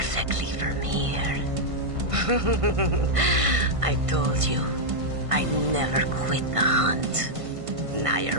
from here. I told you, I'd never quit the hunt. Now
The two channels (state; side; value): late; left; 1.5 ms